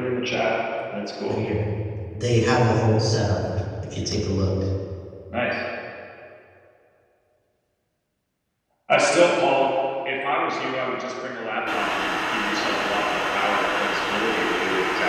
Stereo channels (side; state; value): both; identical; correlation 1.00